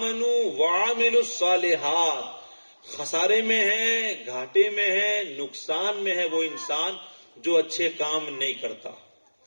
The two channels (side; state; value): both; inverted; correlation -1.00